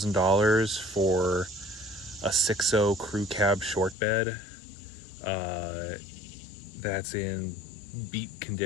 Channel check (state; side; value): drops out; right; at 4.0 s